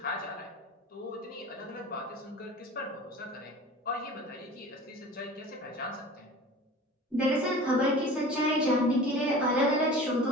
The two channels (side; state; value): both; normal; correlation 0.39